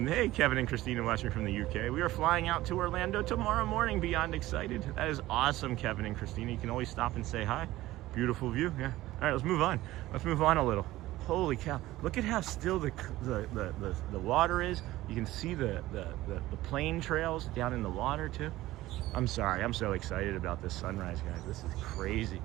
hey, Kevin and Christina watching from the UK. We are flying out to Orlando tomorrow morning. Beyond excited. That is awesome, Kevin and Christina. You can always stop and say hi. Beautiful view. Yeah. All right, let's move on. Let's move on a little. Holy cow! Look at how still the water is. You can see the plane trails down in the water too. I'm sorry. I'm so excited about this sunrise, guys. This is crazy.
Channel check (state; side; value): quieter; left; 16.6 dB